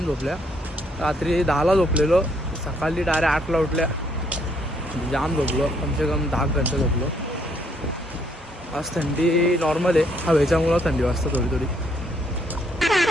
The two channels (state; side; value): normal; both; correlation 0.69